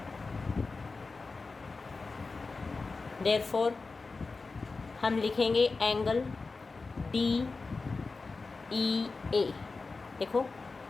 देयरफॉर हम लिखेंगे एंगल डी ई ए, देखो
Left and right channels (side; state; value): right; quieter; 4.0 dB